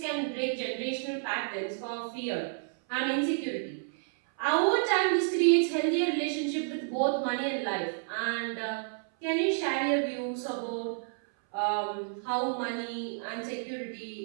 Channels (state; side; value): silent; left; 57 dB below the other